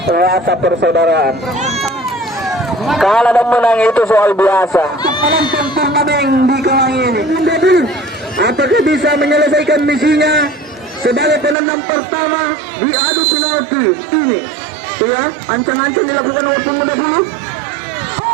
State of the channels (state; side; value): drops out; left; at 11.6 s